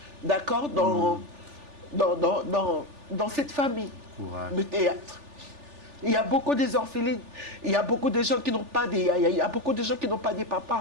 d'accord, dans cette famille de théâtre. Il y a beaucoup des orphelines, il y a beaucoup de gens qui n'ont pas il y a beaucoup de gens qui n'ont pas de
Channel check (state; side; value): late; left; 3.4 ms